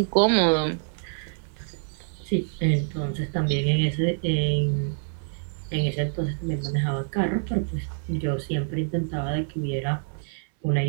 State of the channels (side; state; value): left; silent; 61 dB below the other